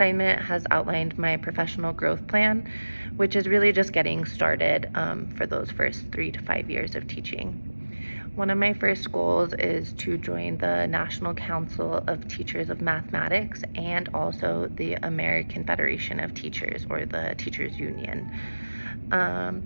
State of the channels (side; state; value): both; inverted; correlation -1.00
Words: has outlined my professional growth plan, which is really just getting started for those first 3 to 5 years of teaching. One of my first goals is to join the National Council of Teachers of Mathematics and also the American Federation of Teachers, or the Teachers Union.